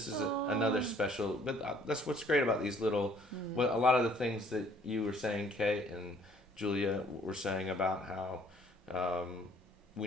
is another special, but that's what's great about these little, well, a lot of the things that you were saying, Kate and Julia were saying about how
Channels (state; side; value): normal; both; correlation 0.60